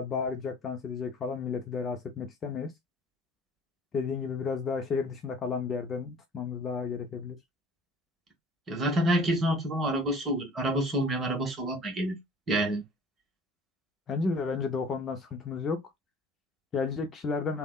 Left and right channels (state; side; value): normal; both; correlation 0.48